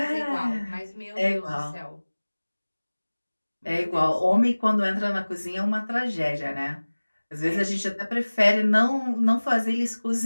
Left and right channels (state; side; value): inverted; both; correlation -1.00